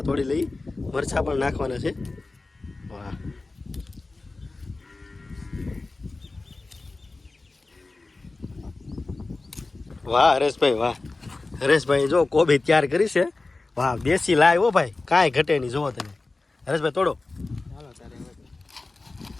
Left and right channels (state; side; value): quieter; right; 3.4 dB